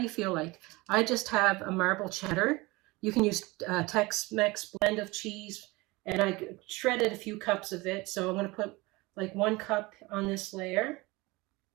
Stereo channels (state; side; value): quieter; left; 22.8 dB